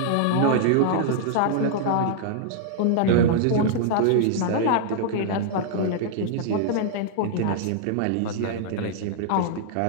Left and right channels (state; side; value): different; both; correlation -0.01